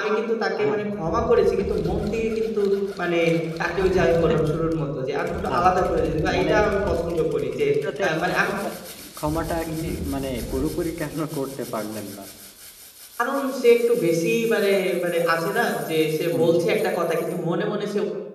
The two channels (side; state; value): both; identical; correlation 1.00